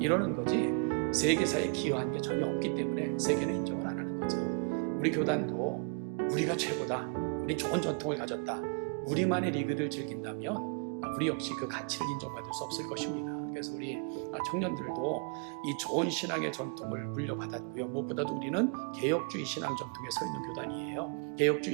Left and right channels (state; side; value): quieter; left; 39.5 dB